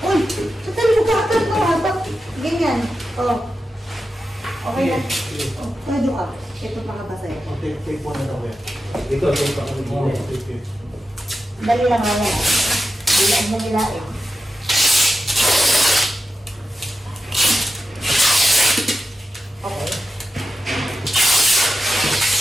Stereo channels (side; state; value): both; normal; correlation 0.91